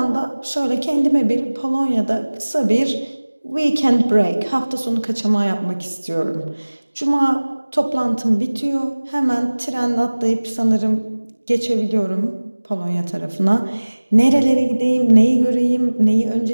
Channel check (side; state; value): both; inverted; correlation -1.00